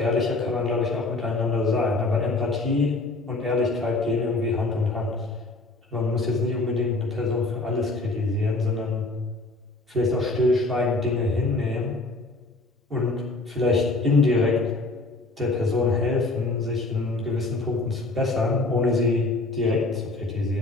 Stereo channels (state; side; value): quieter; right; 3.1 dB